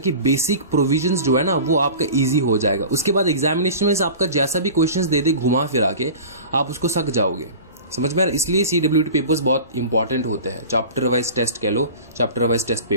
बेसिक प्रोविजंस जो है ना वो आपका इजी हो जाएगा। उसके बाद एग्जामिनेशन में आपका जैसा भी क्वेश्चंस दे दे घुमा फिरा के आप उसको सक जाओगे, समझ में आ रहा है। इसलिए CWT पेपर्स बहुत इंपॉर्टेंट होते हैं, चैप्टर वाइज टेस्ट कह लो, चैप्टर वाइज टेस्ट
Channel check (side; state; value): both; inverted; correlation -0.37